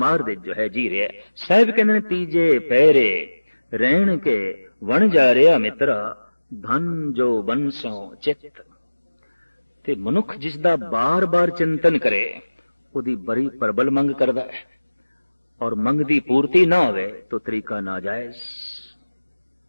दे जो है जी रहा। साहिब कहने तीजे पैरे रहन के वन जा रहा मित्रा, धन जो बंसों चित। ते मनुख जिसदा बार बार चिंतन करे उदी बड़ी प्रबल मंग करदा है, और मंग दी पूर्ति ना होवे तो तरीका नाजायज।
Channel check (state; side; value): inverted; both; correlation -1.00